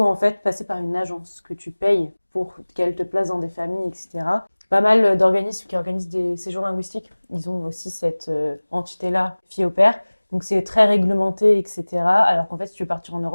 en fait passer par une agence que tu payes pour qu'elle te place dans des familles, etc. Pas mal d'organismes qui organisent des séjours linguistiques. Ils ont aussi cette entité-là, fille au pair. Donc c'est très réglementé, etc. Alors qu'en fait, si tu veux partir en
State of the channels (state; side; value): inverted; both; correlation -1.00